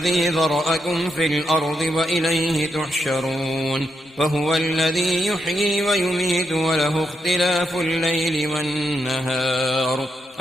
ذرأكم في الأرض وإليه تحشرون وهو الذي يحيي ويميت وله اختلاف الليل والنهار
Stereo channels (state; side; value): normal; both; correlation 0.82